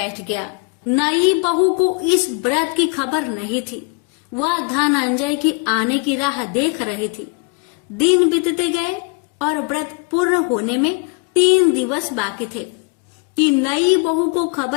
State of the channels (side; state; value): right; quieter; 32.0 dB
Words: गया। नई बहू को इस व्रत की खबर नहीं थी। वह धनंजय की आने की राह देख रही थी। दिन बीतते गए और व्रत पूर्ण होने में 3 दिवस बाकी थे कि नई बहू को